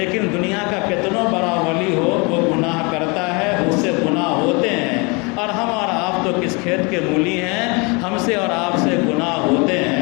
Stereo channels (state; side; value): quieter; right; 29.5 dB